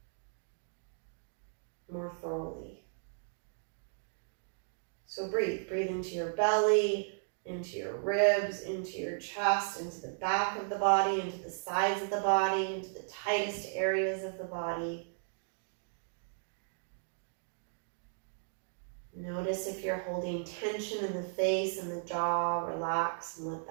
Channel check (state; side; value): silent; left; digital silence